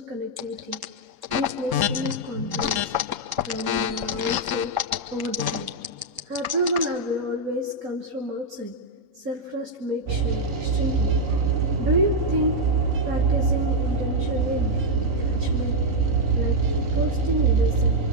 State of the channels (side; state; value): left; late; 3.7 ms